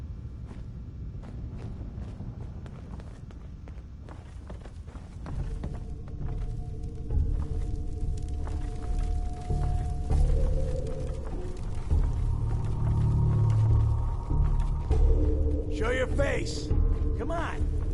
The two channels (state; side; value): identical; both; correlation 1.00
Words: Show your face. Come on.